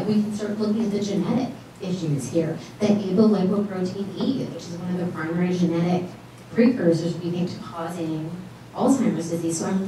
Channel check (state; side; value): identical; both; correlation 1.00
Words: we can start looking at the genetic issues here. The apolipoprotein E, which is one of the primary genetic precursors, we think, to causing Alzheimer's disease. So I'm